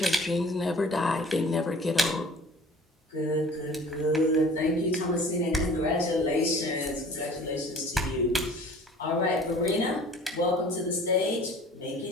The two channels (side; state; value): both; normal; correlation 0.47